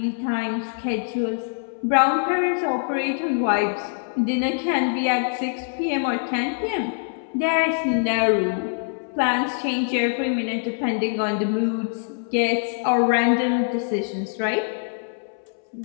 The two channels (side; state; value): right; silent; 62 dB below the other